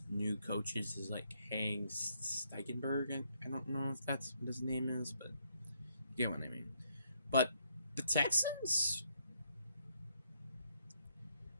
new coaches is like Hank Steigenberg. I don't know if that's what his name is, but you get what I mean. But the Texans,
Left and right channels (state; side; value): inverted; both; correlation -0.73